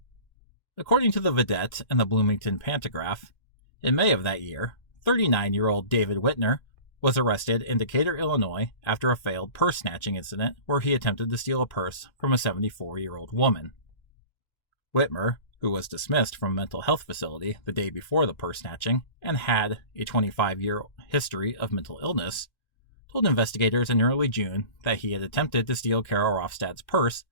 According to the Vidette and the Bloomington Pantagraph, in May of that year, 39-year-old David Whitner was arrested in Decatur, Illinois after a failed purse snatching incident where he attempted to steal a purse from a 74-year-old woman. Whitmer, who was dismissed from a mental health facility the day before the purse snatching and had a 25-year history of mental illness, told investigators in early June that he had attempted to steal Carol Rofstad's purse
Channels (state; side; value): late; right; 1.3 ms